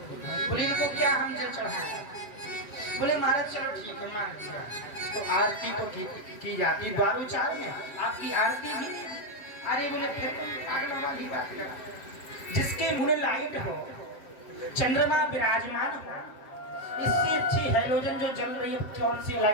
बोले इनको क्या हम जल चढ़ाएं? बोले महाराज चलो ठीक है मान लिया, तो आरती तो की जाती द्वारोचार में, आपकी आरती भी। अरे बोले फिर तुम पागलों वाली बात करा, जिसके मुंह लाइट हो, चंद्रमा विराजमान हो, इससे अच्छी हैलोजन जो जल रही है कौन सी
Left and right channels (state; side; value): late; right; 8.0 ms